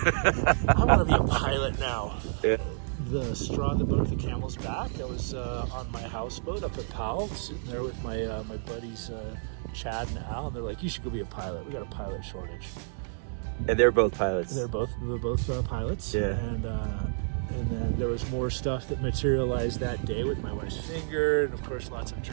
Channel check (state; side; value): silent; left; 58 dB below the other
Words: want to be a pilot now. Yeah. The straw that broke the camel's back, I was on my houseboat up at Powell, sitting there with my my buddies Chad and Al, and they're like, you should go be a pilot. We got a pilot shortage. And they're both pilots. We were both pilots. Yeah. And then there was more stuff that materialized that day with my wife's finger, and of course lots of